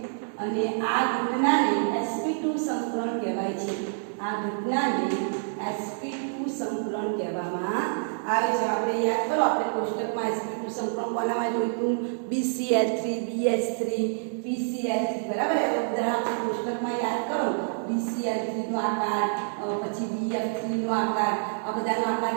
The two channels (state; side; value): silent; left; digital silence